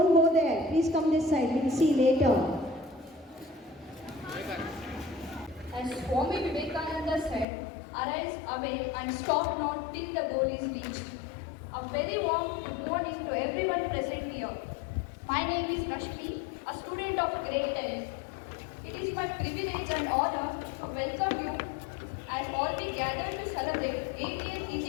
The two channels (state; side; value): drops out; right; at 7.5 s